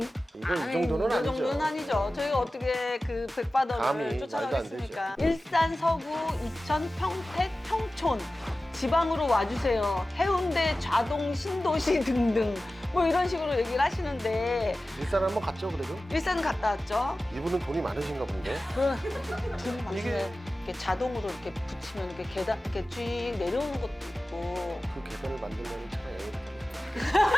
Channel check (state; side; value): normal; both; correlation 0.96